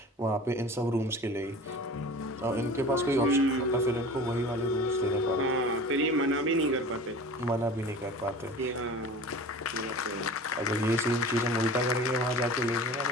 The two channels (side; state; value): both; normal; correlation 0.38